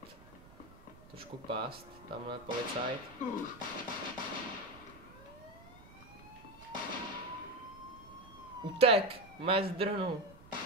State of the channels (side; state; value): right; noise; rumble, 21 dB below the sound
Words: Trošku pást. Tamhle policajt. Utek! Mé zdrhnu.